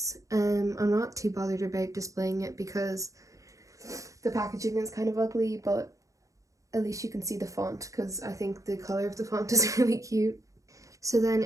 I'm not too bothered about displaying it because the packaging is kind of ugly, but at least you can see the font because I think the color of the font is really cute. So then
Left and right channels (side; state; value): left; late; 0.16 ms